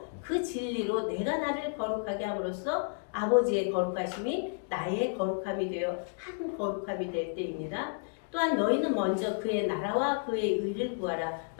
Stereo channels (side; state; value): right; silent; digital silence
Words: 그 진리로 내가 나를 거룩하게 함으로써 아버지의 거룩하심이 나의 거룩함이 되어 한 거룩함이 될 때입니다. 또한 너희는 먼저 그의 나라와 그의 의를 구하라.